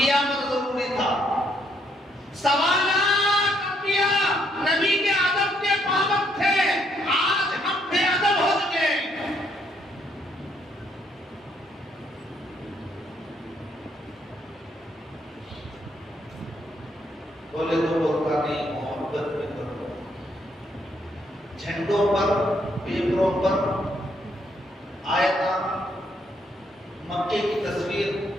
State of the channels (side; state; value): both; normal; correlation 0.72